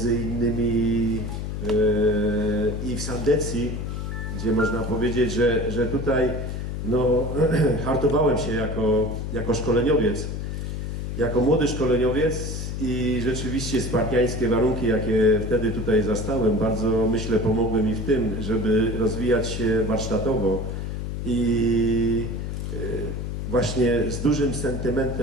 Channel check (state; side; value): noise; left; hum, 4 dB below the sound